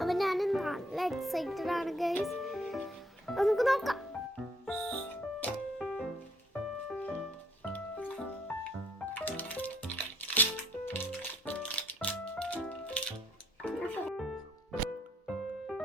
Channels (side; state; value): both; normal; correlation 0.66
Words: അപ്പോൾ ഞാൻ നല്ല എക്സൈറ്റഡ് ആണ് ഗൈസ്. നമുക്ക് നോക്കാം.